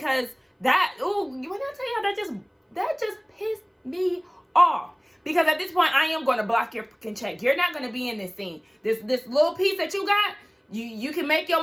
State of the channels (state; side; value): identical; both; correlation 1.00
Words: that, ooh, when I tell y'all, that just pissed me off. Because at this point, I am going to block your fucking check. You're not going to be in this scene. This little piece that you got, you can make